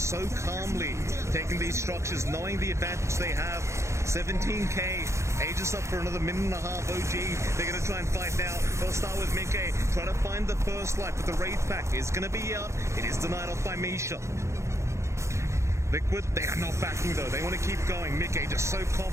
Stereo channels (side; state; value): left; late; 0.14 ms